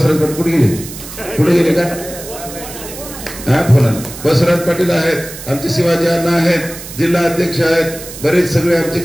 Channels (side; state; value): right; noise; hiss, 13 dB below the sound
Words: पाटील कुठे गेले का? हा फोन आला. बसवराज पाटील आहेत, आमचे शिवाजी अण्णा आहेत, जिल्हा अध्यक्ष आहेत, बरेच सगळे आमचे